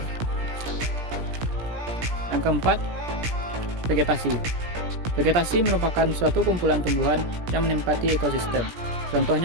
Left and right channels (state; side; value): late; left; 17 ms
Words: Yang keempat, vegetasi. Vegetasi merupakan suatu kumpulan tumbuhan yang menempati ekosistem.